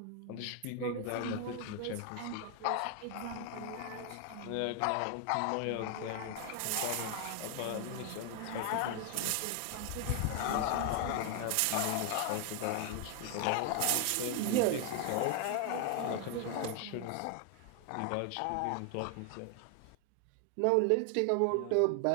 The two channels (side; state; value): both; different; correlation 0.00